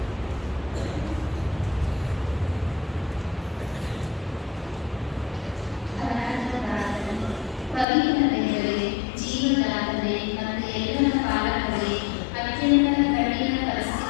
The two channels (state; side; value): drops out; right; at 7.9 s